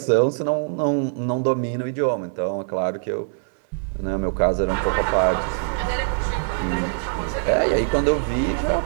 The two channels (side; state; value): left; silent; 59 dB below the other